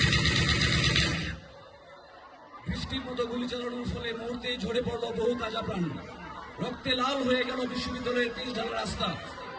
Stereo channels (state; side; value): identical; both; correlation 1.00